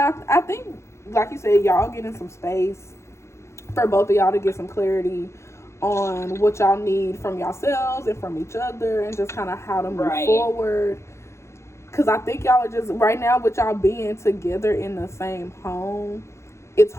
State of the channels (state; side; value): late; right; 0.13 ms